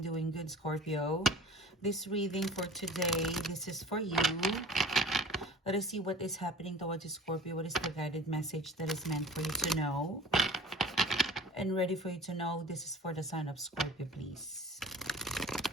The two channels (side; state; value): both; normal; correlation 0.43